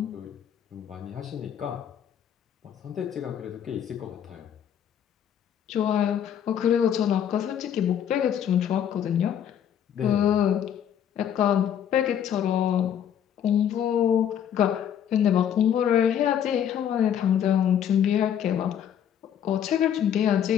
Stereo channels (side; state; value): right; quieter; 9.3 dB